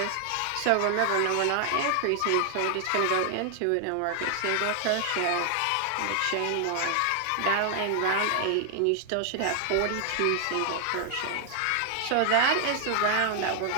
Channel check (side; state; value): both; different; correlation 0.00